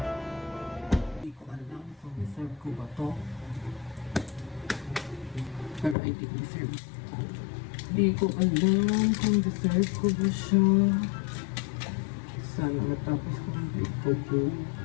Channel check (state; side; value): drops out; right; at 6.0 s